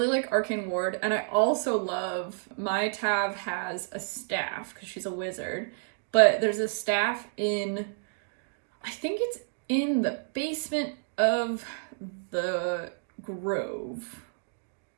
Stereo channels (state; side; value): silent; left; digital silence